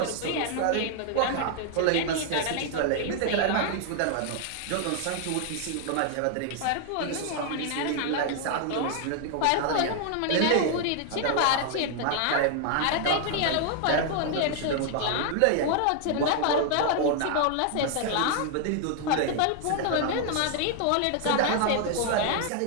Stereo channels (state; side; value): different; both; correlation 0.00